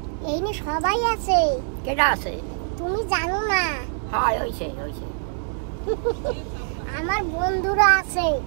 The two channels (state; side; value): silent; left; digital silence